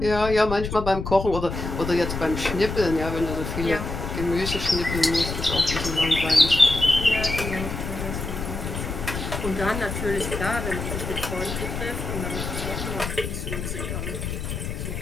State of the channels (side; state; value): left; noise; rumble, 5 dB below the sound